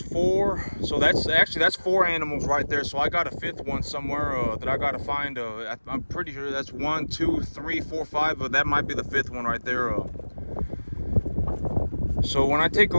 so that's 4 animals right there. So I got a 5th one somewhere that I got to find. I'm pretty sure that's 1, 2, 3, 4, 5, but that might be the 5th one right there. So when I take a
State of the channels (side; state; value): both; inverted; correlation -1.00